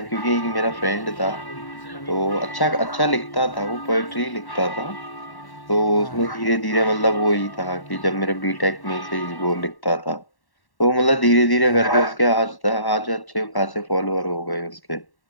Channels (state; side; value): late; right; 1.1 ms